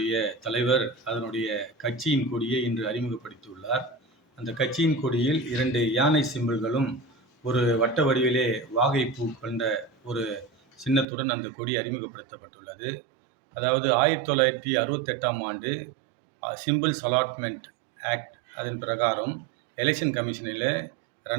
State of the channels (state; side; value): drops out; left; at 11.1 s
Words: தலைவர் அதனுடைய கட்சியின் கொடியை இன்று அறிமுகப்படுத்தியுள்ளார். அந்த கட்சியின் கொடியில் 2 யானை சிம்பல்களும், ஒரு வட்ட வடிவிலே வாகைப்பூ கொண்ட ஒரு சின்னத்துடன் அந்த கொடி அறிமுகப்படுத்தப்பட்டுள்ளது. அதாவது 1968ஆம் ஆண்டு சிம்பிள்ஸ் அலாட்மெண்ட் ஆக்ட் அதன் பிரகாரம் எலெக்ஷன் கமிஷனில்